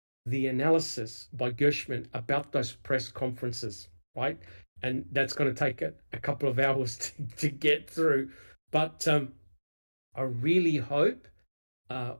the analysis by Gershman about those press conferences, right? And that's going to take a couple of hours to get through. But I really hope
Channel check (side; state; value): both; inverted; correlation -1.00